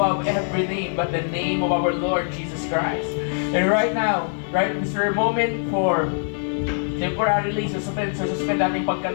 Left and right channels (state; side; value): silent; right; digital silence